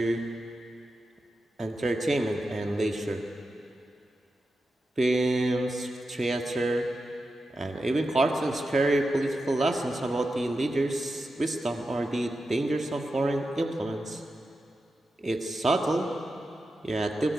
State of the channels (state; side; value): normal; both; correlation 0.90